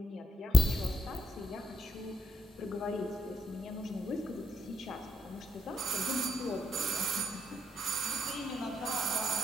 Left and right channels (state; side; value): normal; both; correlation 0.78